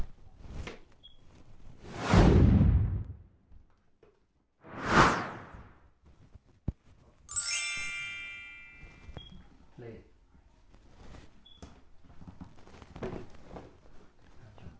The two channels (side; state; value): both; identical; correlation 1.00